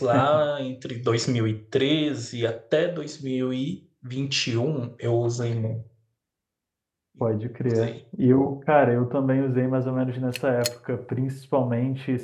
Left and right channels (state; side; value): identical; both; correlation 1.00